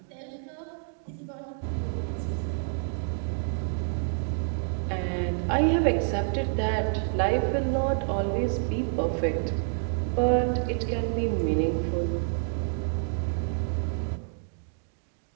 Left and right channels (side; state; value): left; silent; 59 dB below the other